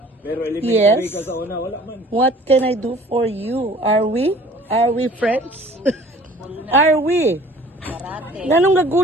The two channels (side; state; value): both; normal; correlation 0.49